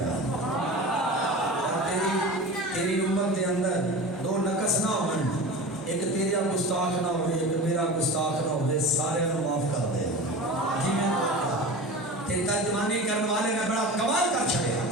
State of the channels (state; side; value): normal; both; correlation 0.32